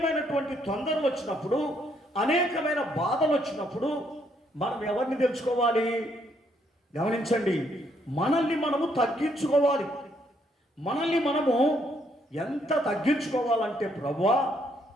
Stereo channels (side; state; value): both; normal; correlation 0.71